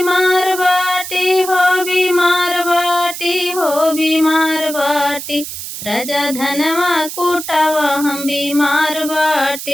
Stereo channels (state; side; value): noise; right; hiss, 8 dB below the sound